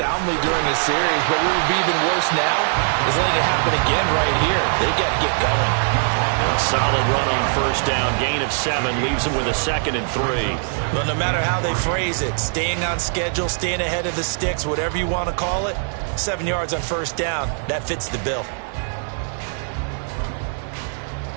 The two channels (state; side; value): silent; left; 65 dB below the other